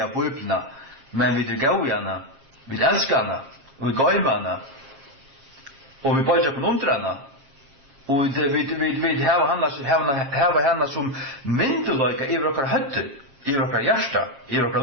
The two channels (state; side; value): late; left; 7.4 ms